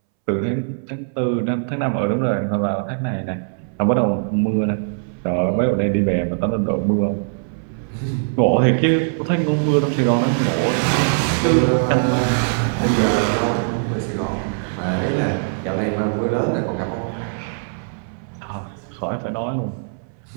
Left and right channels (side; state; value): left; silent; 65 dB below the other